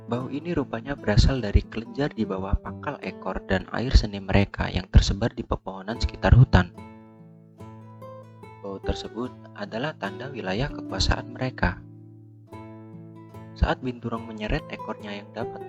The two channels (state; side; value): identical; both; correlation 1.00